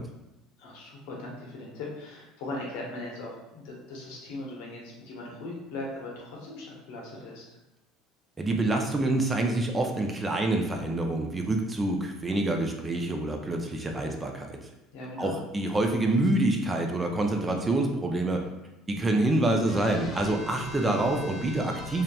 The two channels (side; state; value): both; normal; correlation 0.68